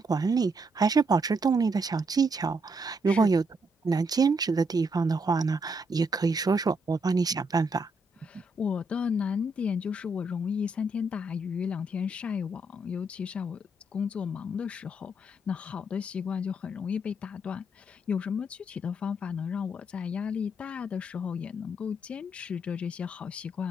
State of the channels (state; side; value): normal; both; correlation 0.76